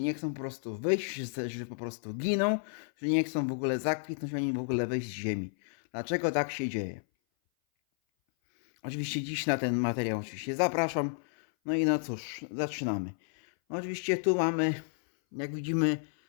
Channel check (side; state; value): right; silent; 57 dB below the other